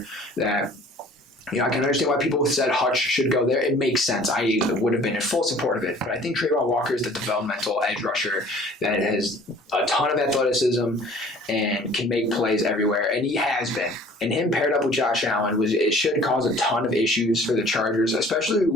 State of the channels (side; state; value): both; normal; correlation 0.51